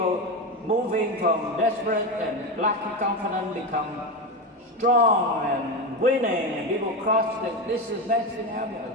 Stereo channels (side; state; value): both; normal; correlation 0.17